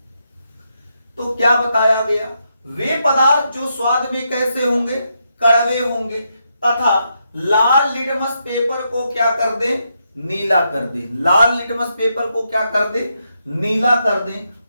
तो क्या बताया गया? वे पदार्थ जो स्वाद में कैसे होंगे? कड़वे होंगे, तथा लाल लिटमस पेपर को क्या कर दे? नीला कर दे। लाल लिटमस पेपर को क्या कर दे? नीला कर दे।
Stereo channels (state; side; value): inverted; both; correlation -0.81